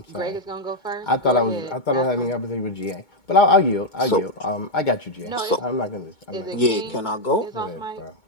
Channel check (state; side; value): late; right; 2.2 ms